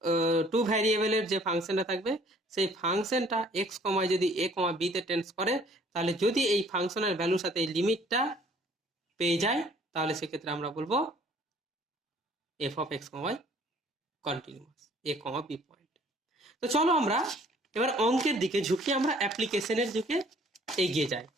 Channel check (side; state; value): both; normal; correlation 0.57